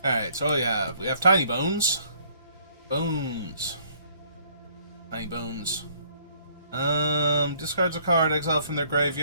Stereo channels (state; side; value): inverted; both; correlation -0.62